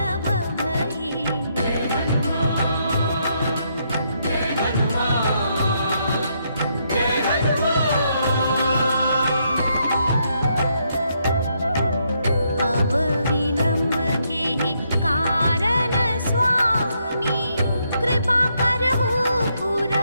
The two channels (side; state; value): both; inverted; correlation -0.76